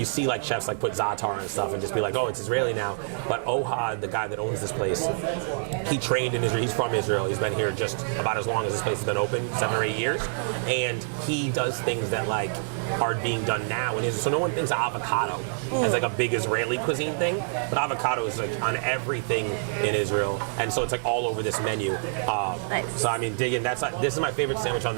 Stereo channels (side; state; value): left; silent; digital silence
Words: see like chefs like put za'atar and stuff and just be like, oh, it's Israeli now. But Ohad, the guy that owns this place, he trained in Israel. He's from Israel. He's been here just about as long as this place has been open, 7 or 8 years, and he does things that like are being done now in Israel. So no one thinks of avocado as like a big Israeli cuisine thing, but avocado is like on everything in Israel, and so it's like all over this menu. Nice. So I mean, dig in. This is my favorite sandwich on